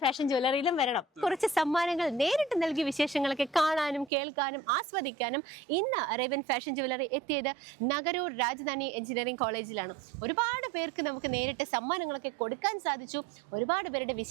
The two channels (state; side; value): drops out; left; at 4.1 s